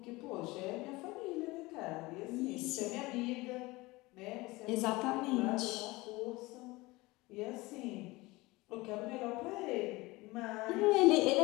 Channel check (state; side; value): quieter; right; 21.7 dB